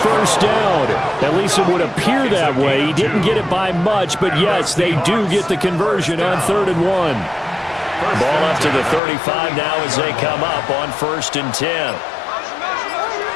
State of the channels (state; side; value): drops out; right; at 9.0 s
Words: down. At least it would appear that way. He didn't get it by much, but yes, they do get the conversion on 3rd and 1. Ball up to the 35 now as they come up on 1st and 10.